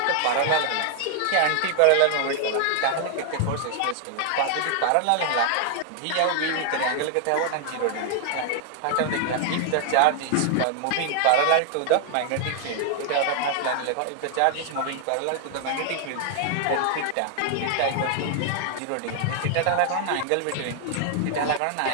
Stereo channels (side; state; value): both; different; correlation 0.00